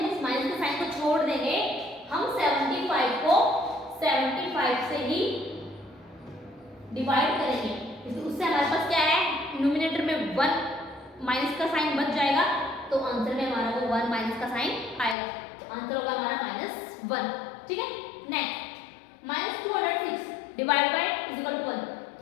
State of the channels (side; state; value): right; drops out; at 15.2 s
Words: इस माइनस के साइन को छोड़ देंगे। हम 75 को 75 से ही डिवाइड करेंगे, इसलिए उससे हमारे पास क्या है न्यूमरेटर में 1 माइनस का साइन बच जाएगा, तो आंसर में हमारा वो 1 माइनस का साइन आएगा, तो आंसर होगा हमारा -1। ठीक है, next -206 divide by is equal to 1,